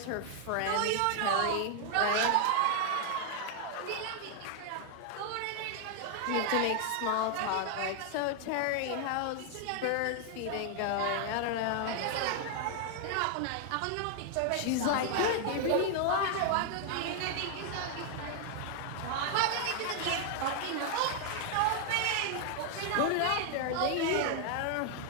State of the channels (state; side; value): different; both; correlation 0.00